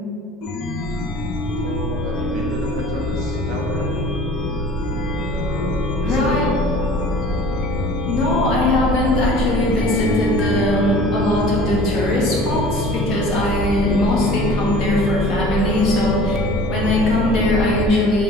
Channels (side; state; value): both; normal; correlation 0.46